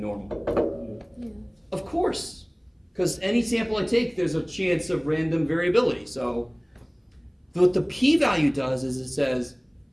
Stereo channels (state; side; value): identical; both; correlation 1.00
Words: normal? Yeah. Of course, because any sample I take, there's a chance of random variability. So, what the p-value does is it says,